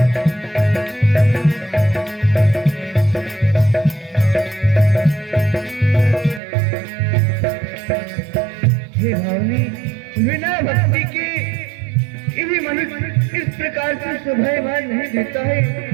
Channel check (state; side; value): drops out; left; at 6.4 s